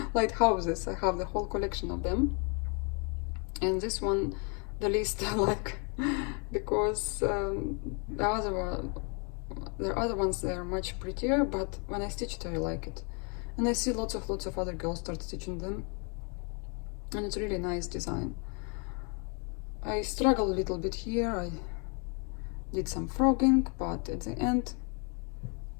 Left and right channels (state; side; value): quieter; right; 36.4 dB